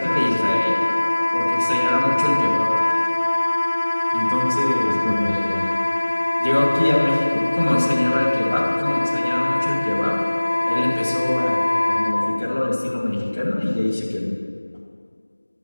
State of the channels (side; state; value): both; inverted; correlation -1.00